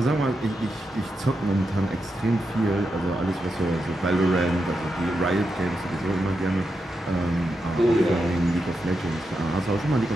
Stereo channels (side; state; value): both; normal; correlation 0.86